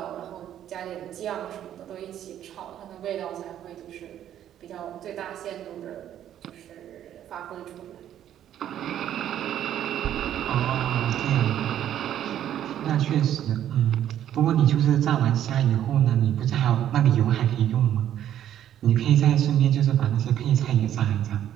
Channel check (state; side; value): quieter; left; 10.9 dB